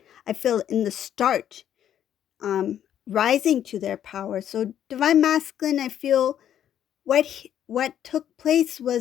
feel, in the start, rising to their power. So divine masculine, I feel what took place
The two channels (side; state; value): right; quieter; 10.3 dB